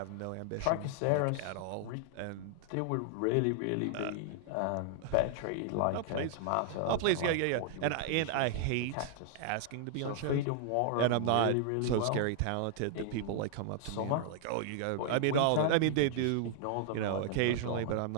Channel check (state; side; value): different; both; correlation 0.00